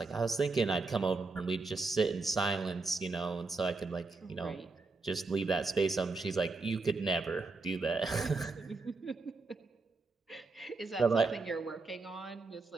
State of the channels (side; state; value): left; quieter; 3.8 dB